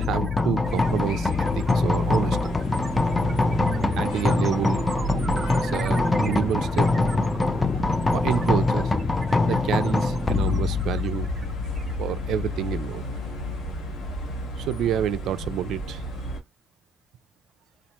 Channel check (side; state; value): both; normal; correlation 0.75